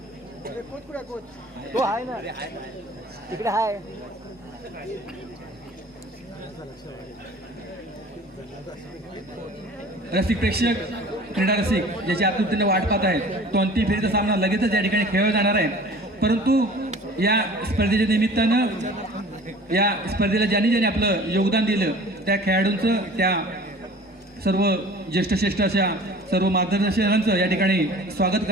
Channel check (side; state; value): both; normal; correlation 0.45